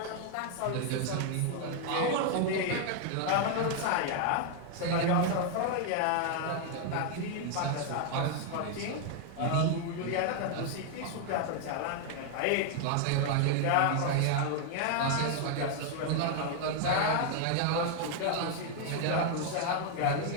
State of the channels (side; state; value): both; different; correlation 0.00